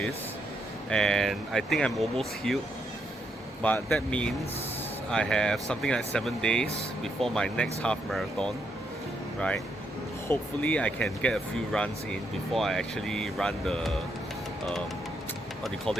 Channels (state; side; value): normal; both; correlation 0.77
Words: and I think I'm almost healed, but that means I have something like 7 days before my next half marathon, right? Hopefully I can get a few runs in before I actually run the what do you call